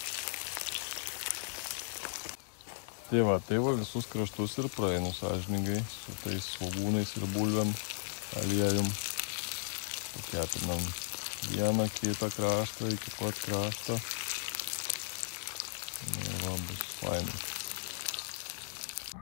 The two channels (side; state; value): right; silent; digital silence